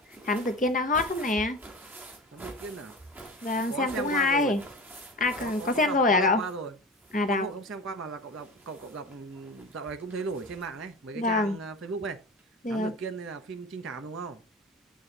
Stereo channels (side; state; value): both; normal; correlation 0.32